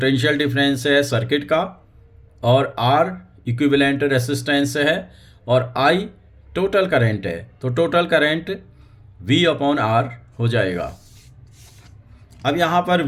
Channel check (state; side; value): identical; both; correlation 1.00